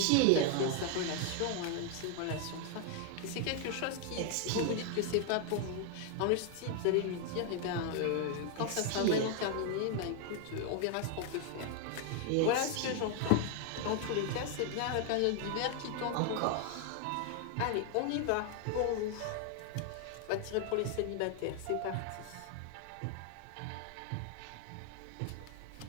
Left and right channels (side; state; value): both; different; correlation 0.00